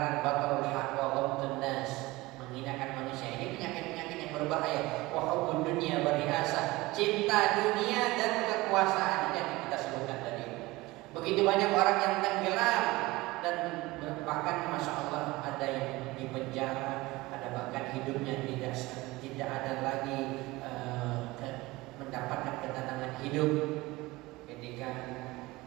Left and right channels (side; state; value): left; quieter; 20.6 dB